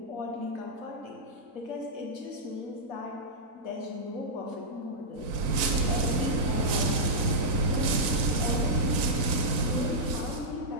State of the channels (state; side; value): late; left; 3.9 ms